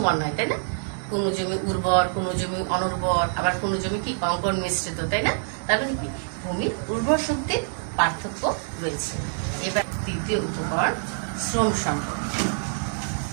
নয়, তাই না? কোন জমি উর্বর, কোন জমি অনুর্বর, আবার কোন জমি কি কঙ্কর মিশ্রিত, তাই না? তার মানে কি ভূমির উর্বর শক্তির পার্থক্য রয়েছে। এবার তৃতীয় উপকরণ শ্রম সম্পদ।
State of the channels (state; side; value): silent; left; digital silence